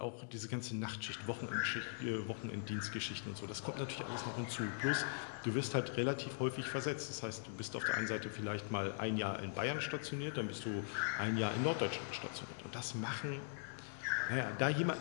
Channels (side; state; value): right; silent; digital silence